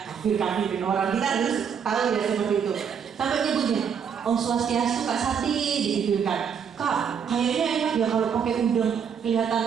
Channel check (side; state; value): left; quieter; 7.3 dB